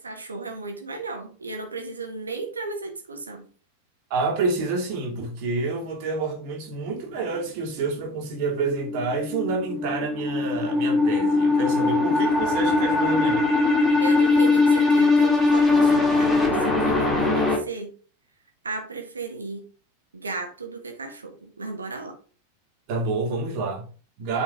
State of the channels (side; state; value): both; normal; correlation 0.56